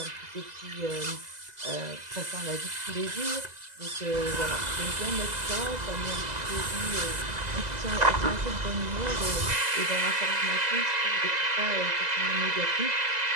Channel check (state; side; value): late; left; 2.0 ms